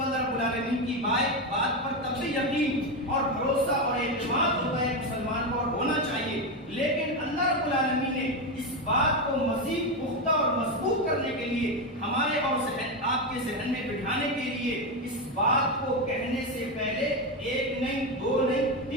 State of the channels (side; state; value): both; normal; correlation 0.12